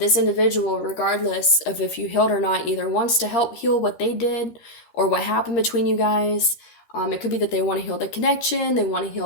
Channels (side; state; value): right; late; 13 ms